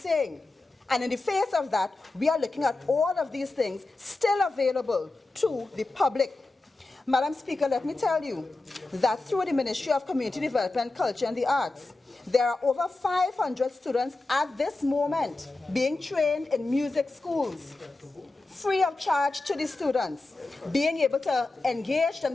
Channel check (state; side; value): quieter; right; 3.1 dB